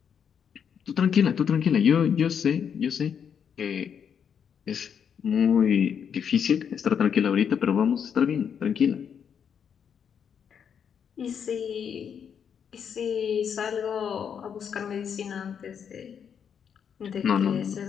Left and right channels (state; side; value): quieter; right; 7.6 dB